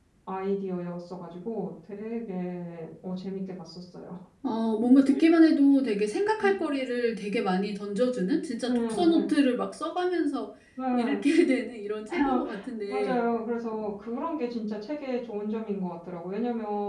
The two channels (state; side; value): identical; both; correlation 1.00